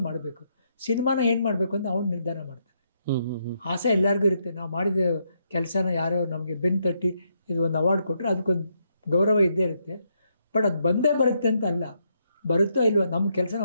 ಮಾಡಬೇಕು. ಸಿನಿಮಾನ ಏನು ಮಾಡಬೇಕು ಅಂತ ಅವ್ನು ನಿರ್ಧಾರ ಮಾಡ್ತಾನೆ. ಆಸೆ ಎಲ್ಲರಿಗೂ ಇರುತ್ತೆ. ನಾವು ಮಾಡಿದ ಕೆಲಸನ ಯಾರೋ ನಮಗೆ ಬೆನ್ನು ತಟ್ಟಿ ಇದು ಒಂದು ಅವಾರ್ಡ್ ಕೊಟ್ಟರೆ ಅದಕ್ಕೊಂದು ಗೌರವ ಇದ್ದೇ ಇರುತ್ತೆ. ಬಟ್ ಅದು ಬಂದೇ ಬರುತ್ತೆ ಅಂತ ಅಲ್ಲ, ಬರುತ್ತೋ ಇಲ್ವೋ ನಮ್ಮ ಕೆಲಸ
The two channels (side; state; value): both; inverted; correlation -0.77